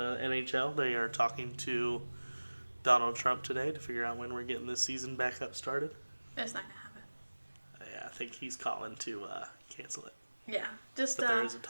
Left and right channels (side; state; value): both; inverted; correlation -1.00